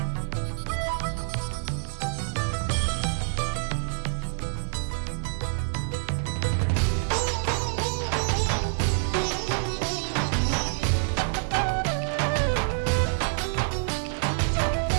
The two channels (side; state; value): left; silent; digital silence